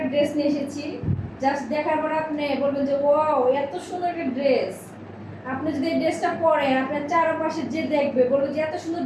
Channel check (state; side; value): identical; both; correlation 1.00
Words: ড্রেস নিয়ে এসেছি। জাস্ট দেখার পর আপনি বলবেন যে ওয়াও, এত সুন্দর একটা ড্রেস। আপনি যদি এই ড্রেসটা পরেন, আপনার চারপাশে যে দেখবে বলবে যে এত সুন্দর